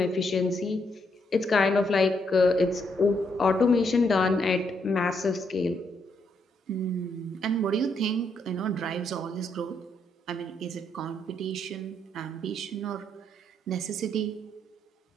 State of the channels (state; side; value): normal; both; correlation 0.75